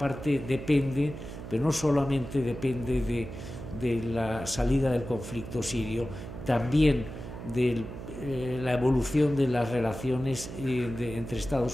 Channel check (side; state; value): right; noise; hum, 10 dB below the sound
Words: depende, pero no solamente depende de la salida del conflicto sirio, también de la evolución de las relaciones entre